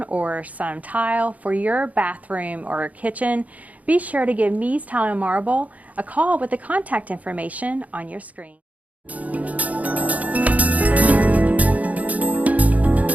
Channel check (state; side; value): late; left; 0.072 ms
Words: or some tile for your bathroom or kitchen, be sure to give Mies Tile and Marble a call with the contact information on your screen.